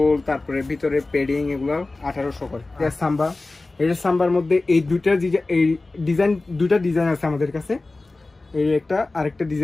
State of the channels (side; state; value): right; quieter; 3.2 dB